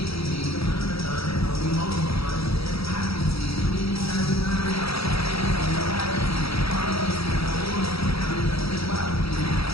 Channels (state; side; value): late; right; 0.77 ms